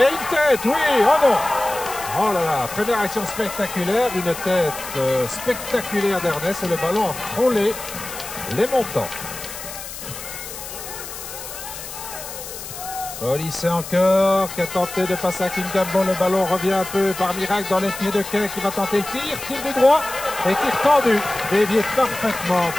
une tête, oui, oh non. Oh là là, première action spectaculaire, une tête spectaculaire d'Ernest et le ballon a frôlé les montants. Olyssée encore, qui a tenté de passer à Kingambo. Le ballon revient un peu par miracle dans les pieds de Quin qui va tenter le tir. Tir du droit et tir tendu. Dévié parfaitement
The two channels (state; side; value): noise; left; hiss, 11 dB below the sound